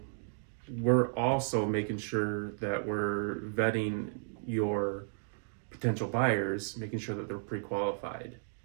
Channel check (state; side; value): silent; left; digital silence